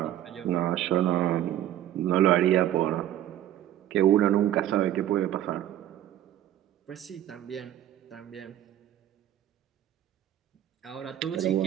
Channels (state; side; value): quieter; left; 12.1 dB